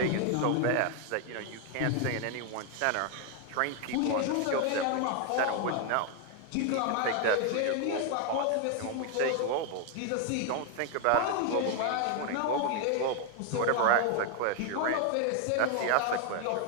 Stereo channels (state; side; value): different; both; correlation 0.01